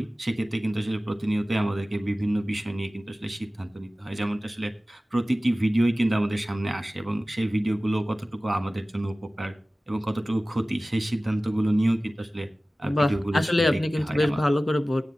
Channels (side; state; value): both; normal; correlation 0.97